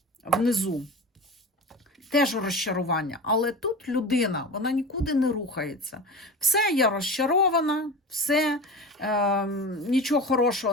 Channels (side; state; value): both; normal; correlation 0.30